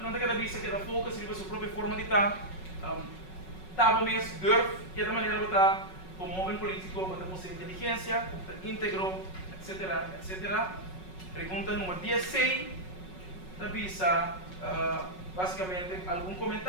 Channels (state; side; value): late; right; 5.4 ms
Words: não tem que vista que da foco se a sua própria forma de estar, tá bom mesmo, durf, que é da maneira de estar como homem político, com sua inteligência, íntegro, etc, etc. Pergunta número 16, da vista, basicamente, algum